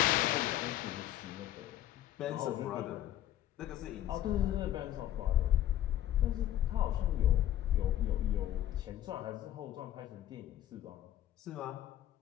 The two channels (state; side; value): quieter; right; 12.4 dB